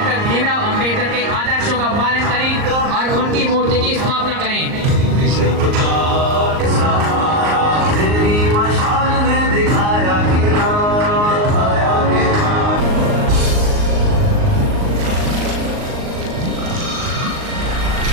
भीमराव अम्बेडकर के आदर्शों का पालन करें और उनकी मूर्ति की स्थापना करें।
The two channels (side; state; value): left; late; 38 ms